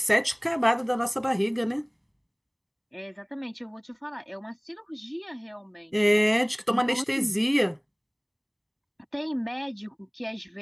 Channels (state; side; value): identical; both; correlation 1.00